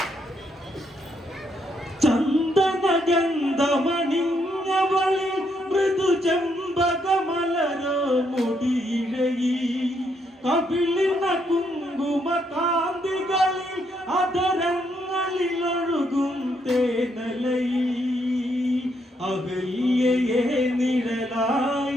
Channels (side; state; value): both; normal; correlation 0.75